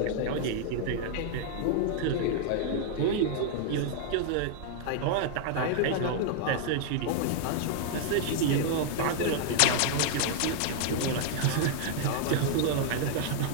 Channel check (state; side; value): different; both; correlation 0.00